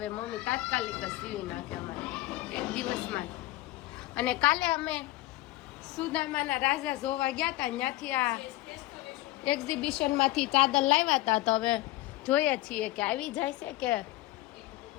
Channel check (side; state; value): right; quieter; 17.6 dB